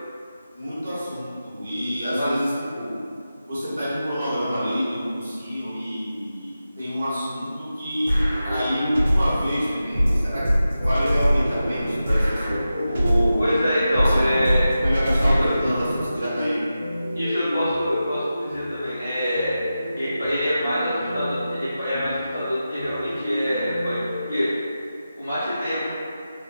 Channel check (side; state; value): both; inverted; correlation -0.92